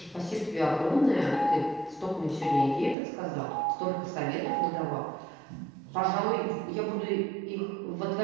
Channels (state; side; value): drops out; left; at 3.0 s